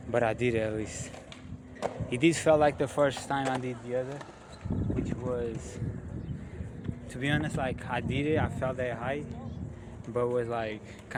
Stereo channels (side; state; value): both; identical; correlation 1.00